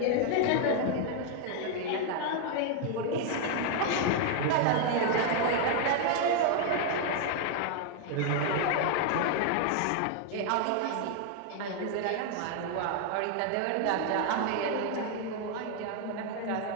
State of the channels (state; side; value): different; both; correlation 0.00